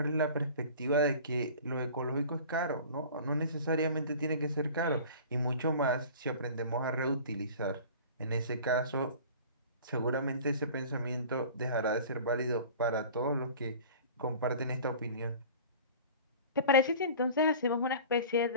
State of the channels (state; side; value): inverted; both; correlation -0.42